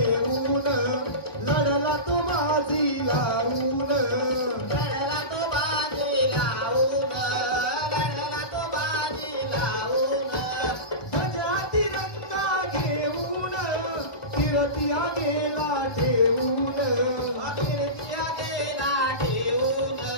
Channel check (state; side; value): late; right; 1.2 ms